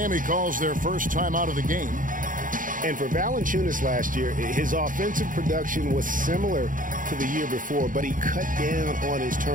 calls their first time out of the game. And for Valanciunas last year, his offensive production was similar to the year before, but he cut down on his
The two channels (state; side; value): late; left; 0.39 ms